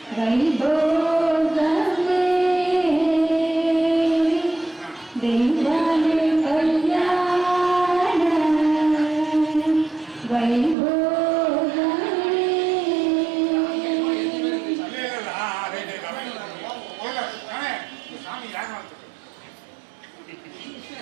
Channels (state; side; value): drops out; left; at 10.8 s